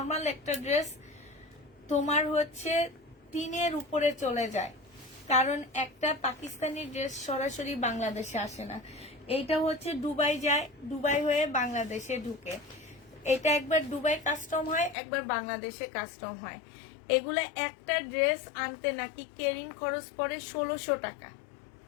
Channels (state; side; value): drops out; right; at 15.0 s